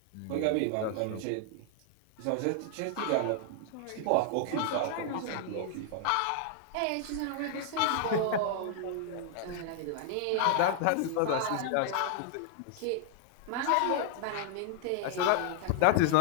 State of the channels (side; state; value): both; different; correlation 0.00